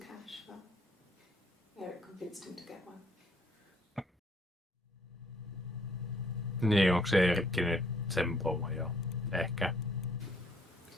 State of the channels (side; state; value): both; normal; correlation 0.65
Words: but Eric convinced him to get one. Niin, onko se Eerikki nyt sen pomo jo? Ehkä.